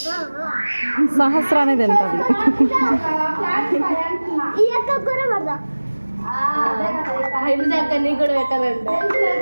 సహస్రానే తింటుంది. కూడా పెట్టాలంటే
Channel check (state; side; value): inverted; both; correlation -1.00